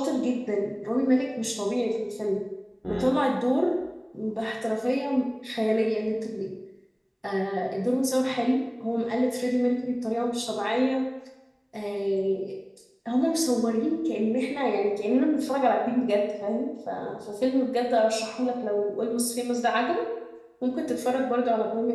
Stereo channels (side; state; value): both; identical; correlation 1.00